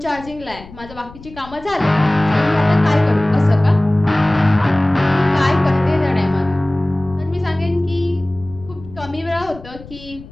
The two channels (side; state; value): left; noise; rumble, 18 dB below the sound